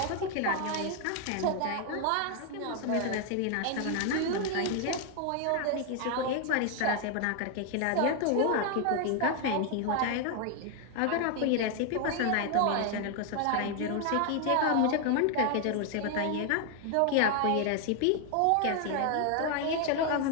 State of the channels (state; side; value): different; both; correlation 0.00